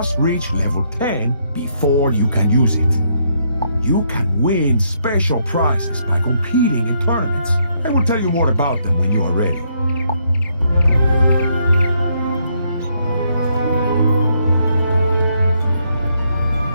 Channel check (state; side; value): inverted; both; correlation -0.74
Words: reach level 10 before you can use it. You can win special prizes by competing in tournaments. I will tell you more about them when you are ready.